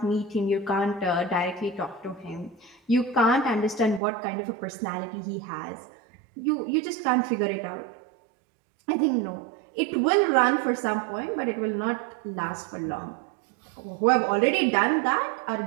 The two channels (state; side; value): drops out; left; at 4.0 s